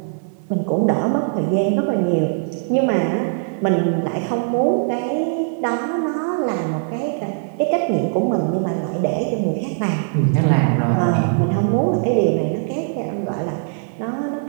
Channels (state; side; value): silent; left; 57 dB below the other